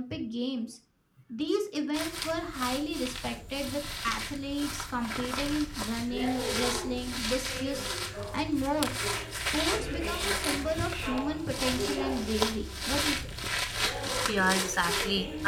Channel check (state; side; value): identical; both; correlation 1.00